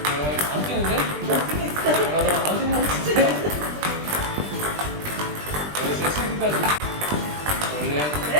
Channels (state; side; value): late; left; 20 ms